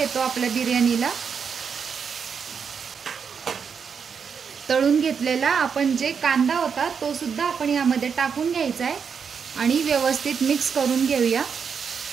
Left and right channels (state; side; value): quieter; left; 6.5 dB